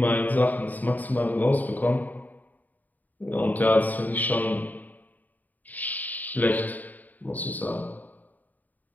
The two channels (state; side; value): late; right; 0.081 ms